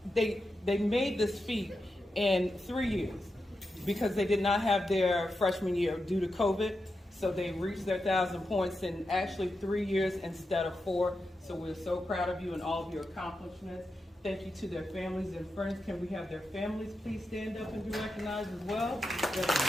they made this feat in 3 years because they did not have their freshman year due to COVID. So they reached their 1,000 points in actually 3 years instead of 4. So we're so proud of you and all of your accomplishments. Thank you to their families and friends. Can we have their families please stand up and be recognized as well?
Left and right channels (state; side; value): normal; both; correlation 0.88